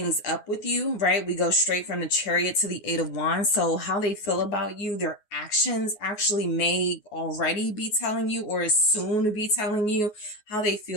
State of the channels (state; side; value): late; right; 9.5 ms